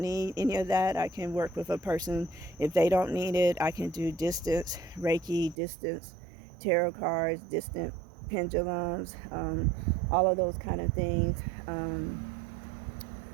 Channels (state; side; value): drops out; left; at 5.6 s